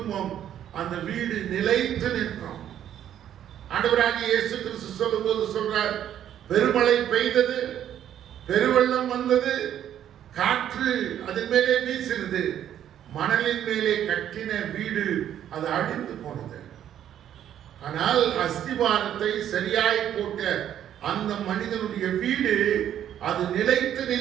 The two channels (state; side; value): quieter; left; 10.5 dB